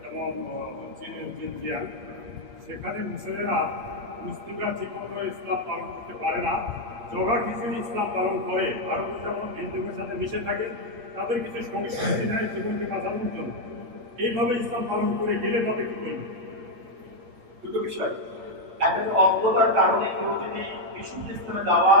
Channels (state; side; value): late; left; 8.7 ms